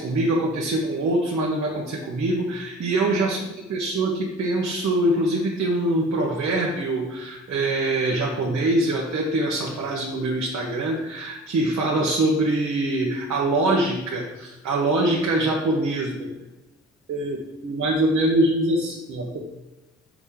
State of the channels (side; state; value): both; normal; correlation 0.40